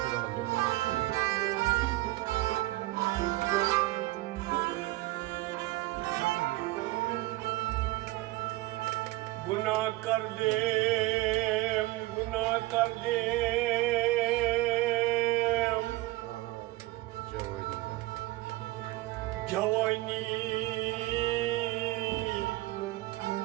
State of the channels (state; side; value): quieter; left; 18.7 dB